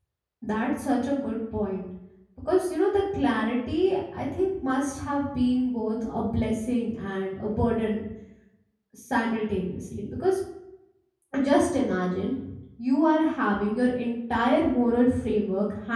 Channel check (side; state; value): both; identical; correlation 1.00